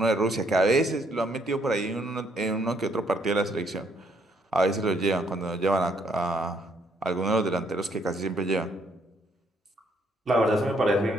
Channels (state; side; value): normal; both; correlation 0.69